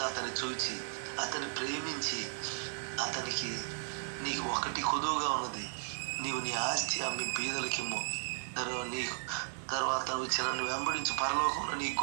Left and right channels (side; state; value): left; silent; digital silence